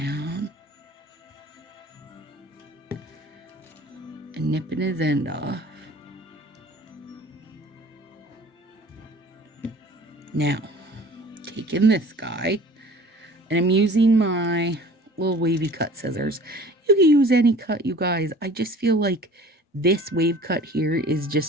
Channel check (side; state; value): both; normal; correlation 0.46